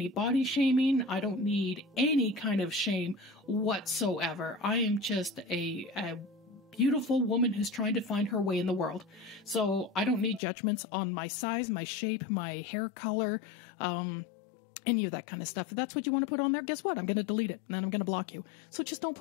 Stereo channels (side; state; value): right; drops out; at 10.4 s